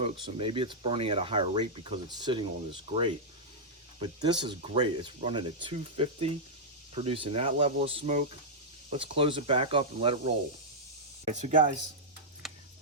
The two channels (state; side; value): normal; both; correlation -0.08